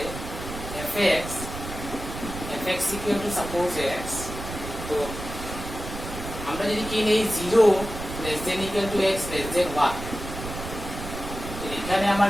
fx equal to suppose x, তো আমরা যদি কি নেই 0 less than equal to x less than 1, এখানে আমার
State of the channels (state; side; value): noise; right; rumble, 9 dB below the sound